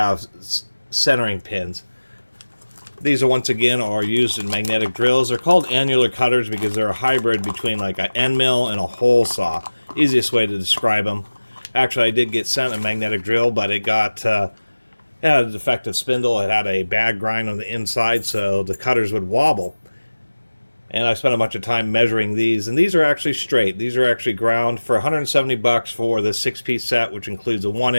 centering pins. These are once again are used in magnetic drills. They're called annular cutters because they're a hybrid between like an end mill and a hole saw. Easiest way to describe them. Actually, I did get sent a magnetic drill, but it got it had a defective spindle. It had a bad grind on the inside, so the cutters would wobble. And I spent a bunch of time measuring these, and these are actually straight. These are actually ground for 170 bucks for the 6-piece set, which includes a 1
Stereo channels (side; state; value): both; inverted; correlation -1.00